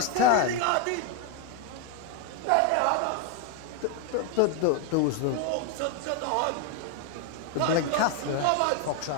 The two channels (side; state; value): both; different; correlation 0.01